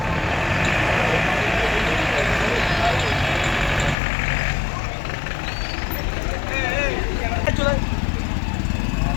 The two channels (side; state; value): right; drops out; at 4.0 s